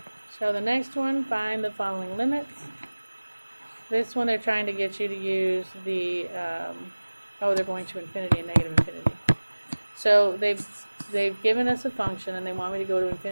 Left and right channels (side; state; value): both; inverted; correlation -1.00